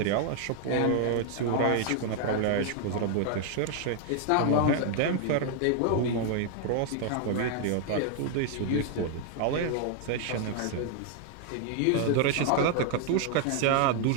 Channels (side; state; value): both; different; correlation 0.00